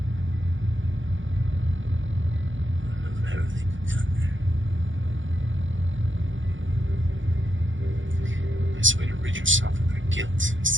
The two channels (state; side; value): late; left; 0.56 ms